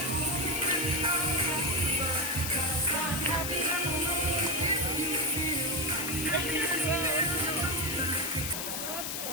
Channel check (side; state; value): left; noise; hiss, 3 dB below the sound